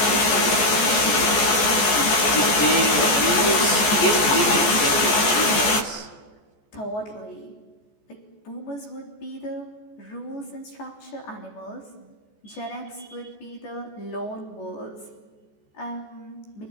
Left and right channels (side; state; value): right; late; 14 ms